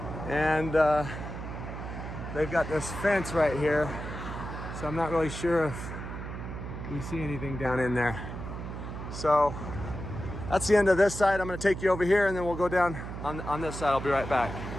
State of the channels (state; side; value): noise; right; hum, 8 dB below the sound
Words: And they've got this fence right here. So I'm not really sure if we see anything down in there. So that's the end of this side. I'm gonna take you over here and then we'll go down on this side. I'll be right back.